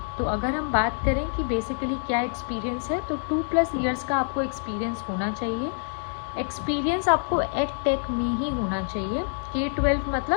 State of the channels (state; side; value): silent; right; digital silence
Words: तो अगर हम बात करें कि बेसिकली क्या एक्सपीरियंस है, तो 2+ ईयर्स का आपको एक्सपीरियंस होना चाहिए। एक्सपीरियंस आपको एडटेक में ही होना चाहिए। K-12